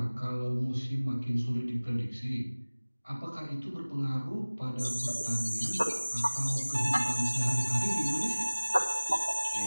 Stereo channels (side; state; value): both; inverted; correlation -1.00